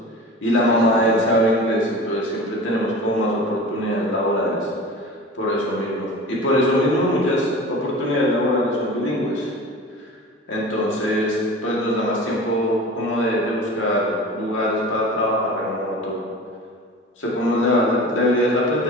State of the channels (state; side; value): normal; both; correlation 0.37